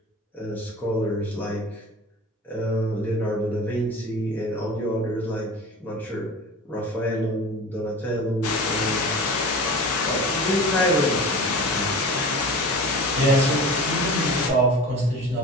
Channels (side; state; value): both; normal; correlation 0.35